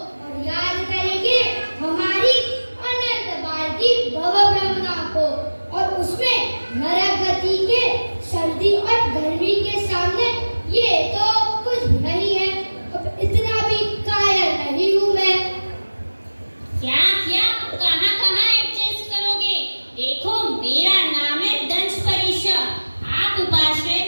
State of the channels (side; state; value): both; inverted; correlation -1.00